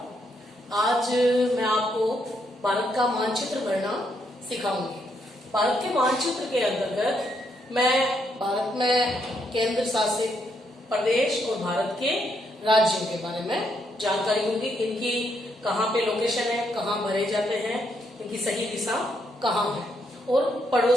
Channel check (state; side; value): normal; both; correlation 0.76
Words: आज मैं आपको भारत का मानचित्र गणना सिखाऊंगी। भारत के मानचित्र के अंतर्गत मैं भारत में केंद्र शासित प्रदेश और भारत के राज्यों के बारे में जानकारी दूंगी। इनकी कहाँ पे लोकेशन है, कहाँ भरे जाते हैं, इनकी सही दिशा कहाँ है, और